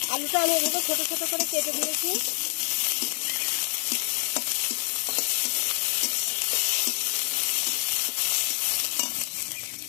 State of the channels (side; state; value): right; silent; digital silence